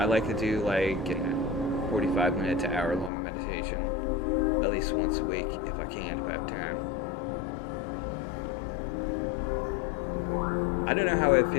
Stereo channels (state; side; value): drops out; right; at 3.1 s